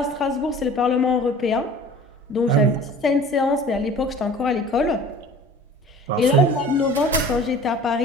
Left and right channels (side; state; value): both; normal; correlation 0.44